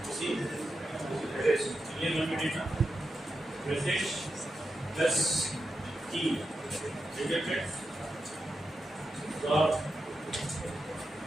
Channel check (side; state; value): both; normal; correlation 0.88